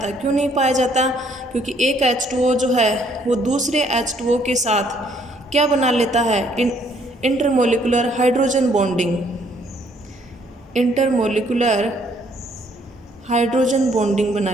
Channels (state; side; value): normal; both; correlation 0.65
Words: क्यों नहीं पाया जाता, क्योंकि एक H2O जो है वो दूसरे H2O के साथ क्या बना लेता है, intermolecular hydrogen bonding, intermolecular hydrogen bonding बना